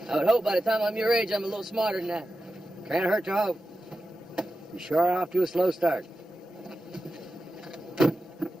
I would hope by the time I'm your age, I'm a little smarter than that. Can't hurt to hope. You sure are off to a slow start.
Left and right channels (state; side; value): normal; both; correlation 0.92